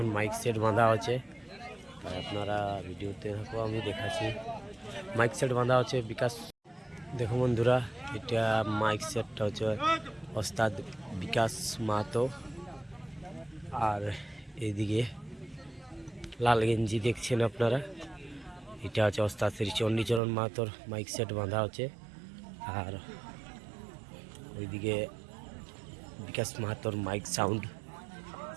মাইক সেট বাঁধা আছে। তাই আপনারা ভিডিওতে থাকো, আমি দেখাচ্ছি। মাইক সেট বাঁধা আছে বিকাশ। দেখো বন্ধুরা, এটা মাইক সেটটা হচ্ছে ওস্তাদ বিকাশ মাহাতো। আর এইদিকে লাল গেঞ্জি দেখছেন আপনারা, এটা হচ্ছে ওস্তাদ শ্রী চণ্ডীচরণ মাহাতোর মাইক সেট বাঁধা আছে। আর ওইদিকে বিকাশ মাহাতোর মাইক সাউন্ড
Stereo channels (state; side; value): drops out; left; at 20.2 s